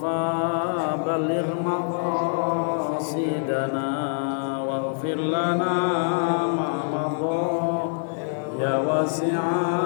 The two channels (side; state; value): right; silent; digital silence